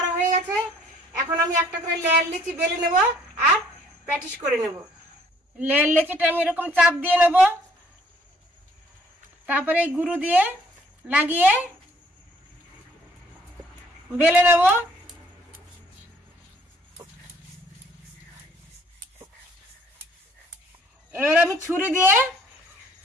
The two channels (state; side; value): normal; both; correlation 0.61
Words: হয়ে গেছে। এখন আমি একটা করে লেয়ার লিচি বেলে নেব আর প্যাটিস করে নেব। লেয়ার লিচিটা আমি এরকম চাপ দিয়ে নেব। তারপরে এই গুঁড়ো দিয়ে লাগিয়ে বেলে নেব। এবার আমি ছুরি দিয়ে